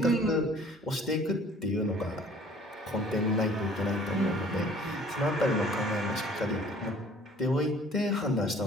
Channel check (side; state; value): both; normal; correlation 0.53